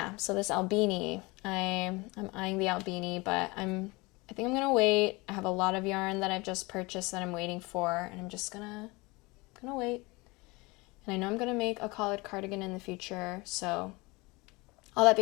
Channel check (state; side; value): quieter; right; 24.5 dB